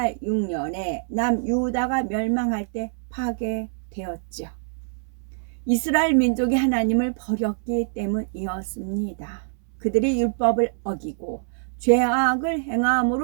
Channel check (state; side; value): silent; left; 62 dB below the other